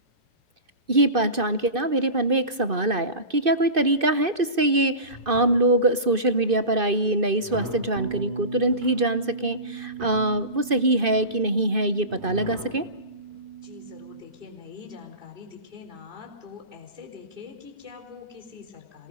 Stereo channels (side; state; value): left; late; 2.5 ms